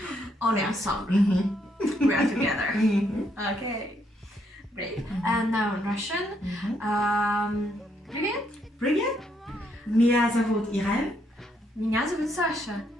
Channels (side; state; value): both; normal; correlation 0.74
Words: On est ensemble. We are together. Okay, great. And now in Russian. Привет. Привет. Меня зовут Irène. Меня зовут Саша.